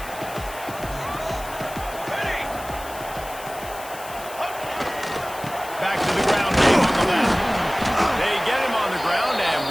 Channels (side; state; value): left; noise; hiss, 15 dB below the sound